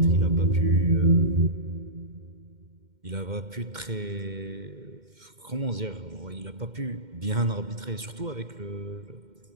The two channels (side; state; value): left; late; 2.1 ms